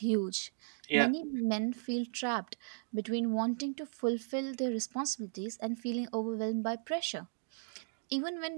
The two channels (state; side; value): silent; left; digital silence